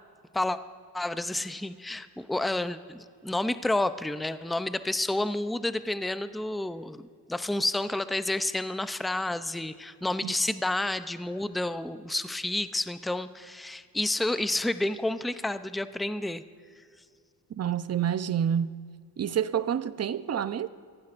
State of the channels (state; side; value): normal; both; correlation 0.77